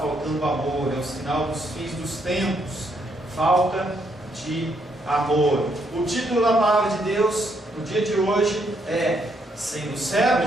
amor, é o sinal dos fins dos tempos. Falta de amor. O título da palavra de Deus no dia de hoje é Sendo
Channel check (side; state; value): both; normal; correlation 0.74